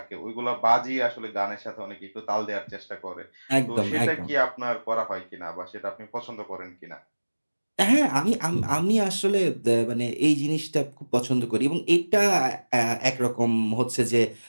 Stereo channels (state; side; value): inverted; both; correlation -1.00